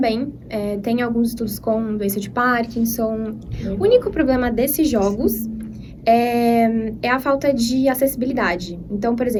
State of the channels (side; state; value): both; identical; correlation 1.00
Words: tem alguns estudos com doença de Parkinson. O único problema desses jogos é a falta de acessibilidade. Então, por